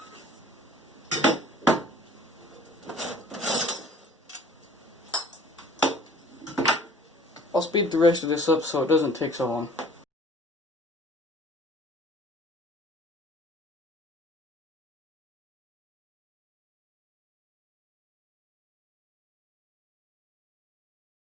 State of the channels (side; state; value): both; normal; correlation 0.51